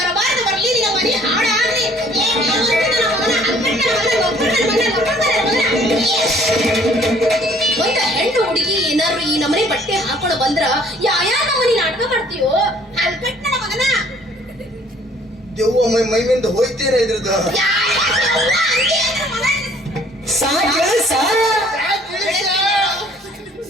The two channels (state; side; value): normal; both; correlation 0.58